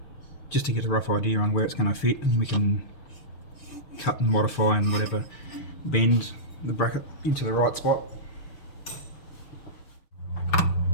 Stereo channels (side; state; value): right; late; 6.8 ms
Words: just to get a rough idea on where it's going to fit, and we can cut and modify and whatever, bend the bracket into the right spot.